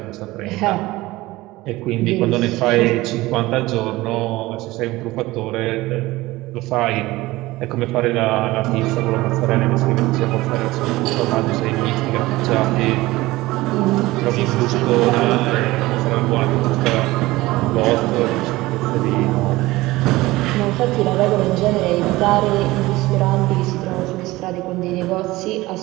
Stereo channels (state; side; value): quieter; left; 19.1 dB